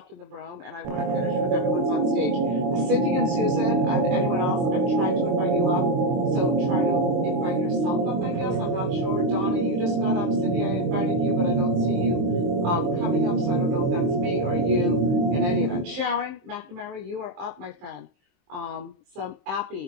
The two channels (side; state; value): left; late; 23 ms